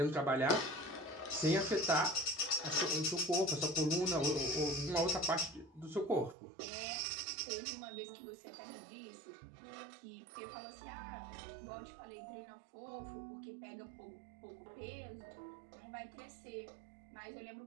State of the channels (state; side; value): drops out; left; at 6.4 s